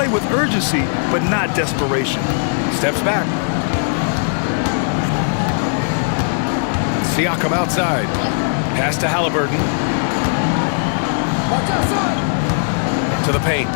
with urgency, but not desperation. Steps back. Siakam outside. Pass to Halliburton. To the paint.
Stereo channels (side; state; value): right; silent; digital silence